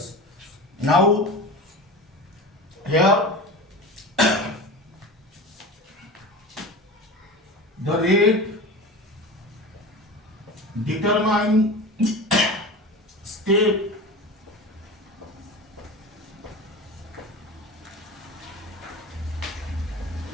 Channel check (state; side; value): normal; both; correlation 0.30